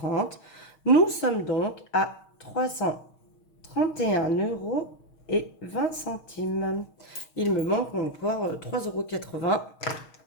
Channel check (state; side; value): late; right; 6.4 ms